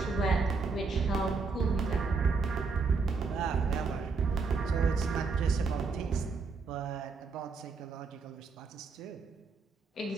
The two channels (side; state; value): left; quieter; 4.6 dB